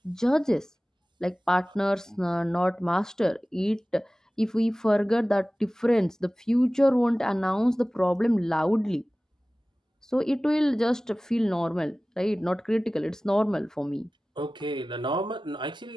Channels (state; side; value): normal; both; correlation 0.97